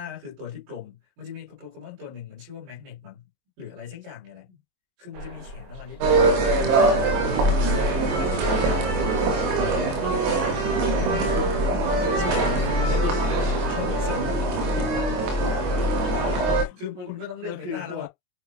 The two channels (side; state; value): left; late; 23 ms